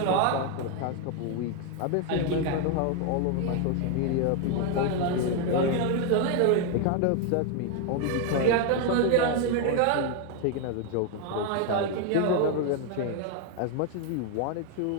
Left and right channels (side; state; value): both; different; correlation 0.01